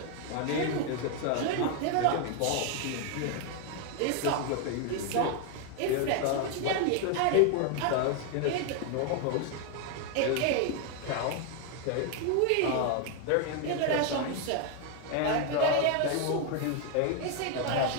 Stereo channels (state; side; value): different; both; correlation 0.01